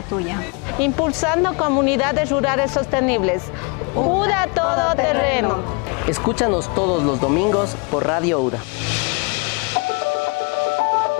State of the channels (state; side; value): quieter; right; 31.9 dB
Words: tuya. Impulsando comunidades rurales sostenibles. UDA Todoterreno. Escúchanos todos los domingos por Radio UDA.